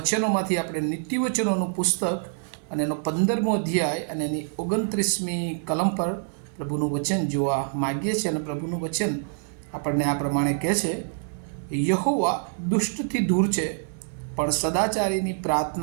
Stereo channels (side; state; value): left; silent; digital silence